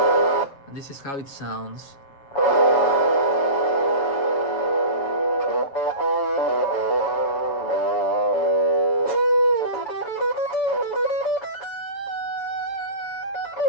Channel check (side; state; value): right; late; 7.4 ms